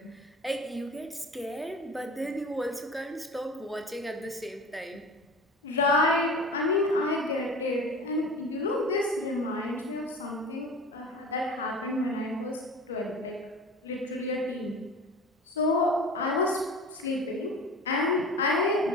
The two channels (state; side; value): normal; both; correlation 0.36